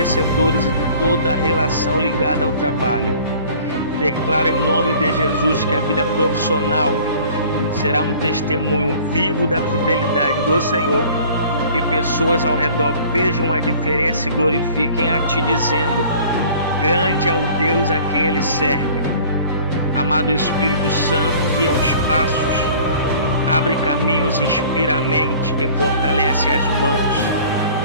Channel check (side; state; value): both; inverted; correlation -0.49